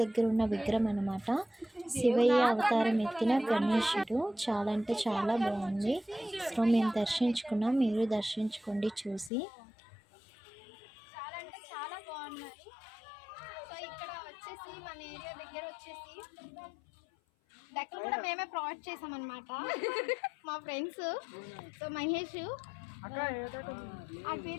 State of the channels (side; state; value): right; drops out; at 9.3 s